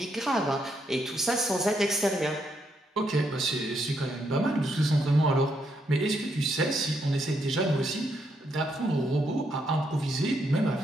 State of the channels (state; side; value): normal; both; correlation 0.77